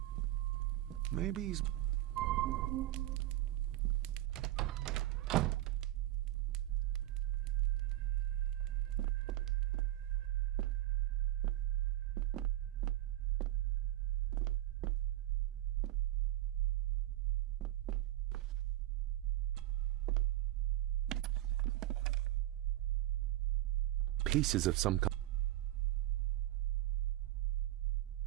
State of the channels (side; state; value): left; quieter; 15.1 dB